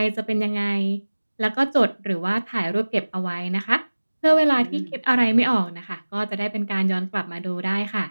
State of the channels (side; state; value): both; inverted; correlation -1.00